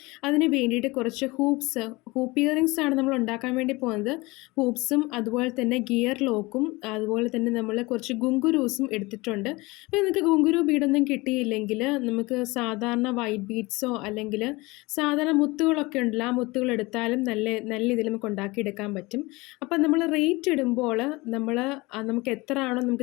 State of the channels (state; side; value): quieter; right; 23.1 dB